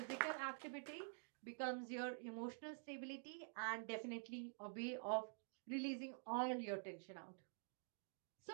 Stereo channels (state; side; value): silent; left; digital silence